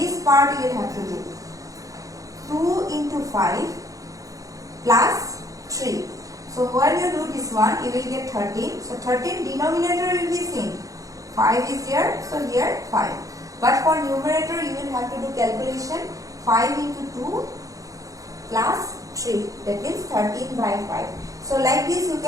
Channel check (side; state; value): left; late; 0.17 ms